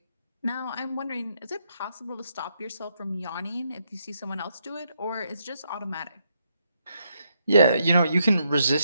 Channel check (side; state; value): both; inverted; correlation -0.77